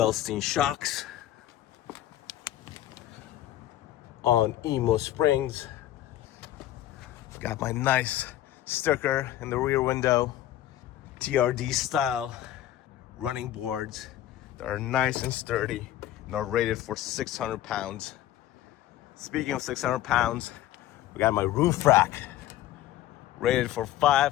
shocks on EMO springs. I've got my nice sticker in the rear window, TRD style running boards that are nice and sturdy and are rated for 600 pounds. Speaking of 600 pounds, we got my roof rack rated for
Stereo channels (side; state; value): right; quieter; 13.3 dB